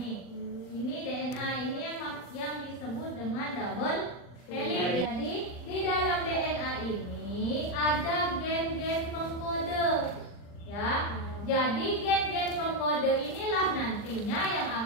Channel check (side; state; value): right; late; 40 ms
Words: Ini DNA ini yang disebut dengan double helix. Jadi, di dalam DNA ini ada gen-gen pengkode. Ya. Jadi gen-gen pengkode inilah nantinya yang